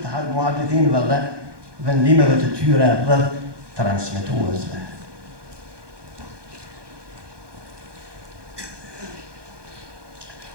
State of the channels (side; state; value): left; late; 1.2 ms